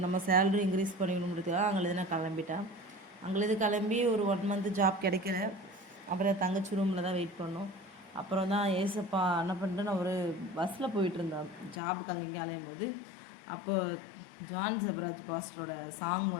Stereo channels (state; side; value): drops out; right; at 11.8 s